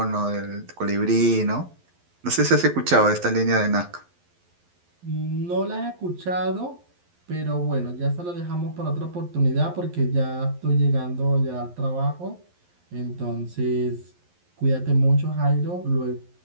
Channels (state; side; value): late; left; 11 ms